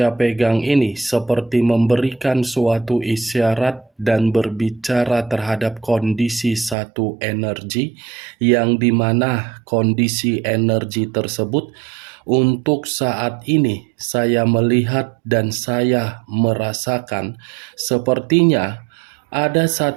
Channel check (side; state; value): left; drops out; at 6.8 s